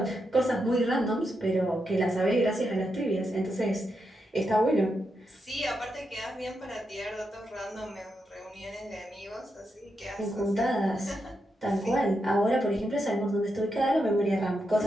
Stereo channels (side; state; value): both; normal; correlation 0.84